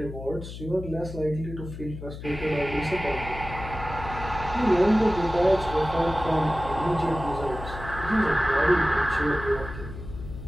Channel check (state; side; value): noise; left; hum, 11 dB below the sound